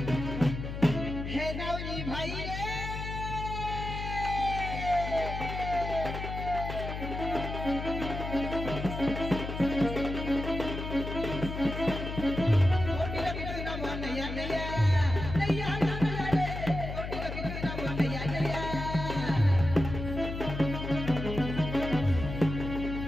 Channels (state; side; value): noise; left; hum, 6 dB below the sound